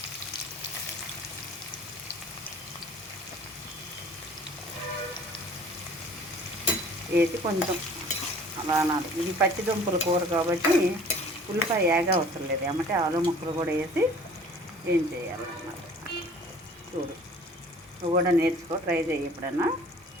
వేసి కొంచెం అలా అనాలి. ఇది పచ్చి దుంపల కూర కాబట్టి ఉల్లిపాయ ఏగా అవసరం లేదు. ఏమంటే ఆలు ముక్కలు కూడా వేసి ఏం చేయాలన్నమాట. చూడు, నువ్వు కూడా నేర్చుకో, ట్రై చేయి ఎప్పుడన్నా.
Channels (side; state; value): both; normal; correlation 0.49